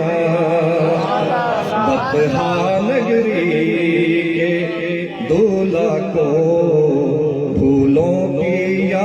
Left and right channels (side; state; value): both; identical; correlation 1.00